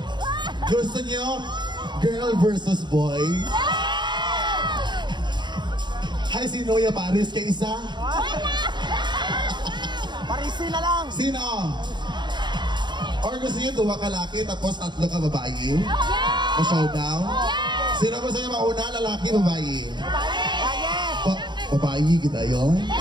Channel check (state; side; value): late; left; 0.22 ms